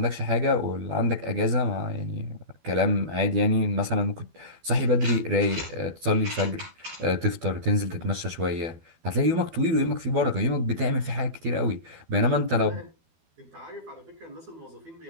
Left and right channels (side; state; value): left; late; 12 ms